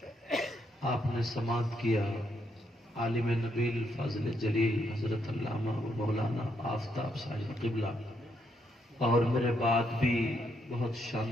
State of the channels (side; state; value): both; normal; correlation 0.76